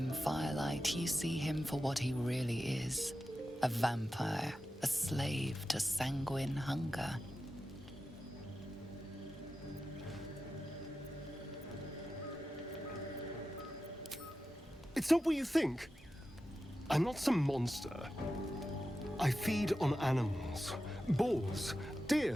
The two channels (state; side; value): normal; both; correlation 0.92